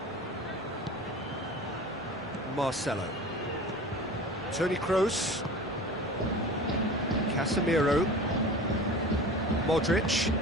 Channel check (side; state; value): both; normal; correlation 0.37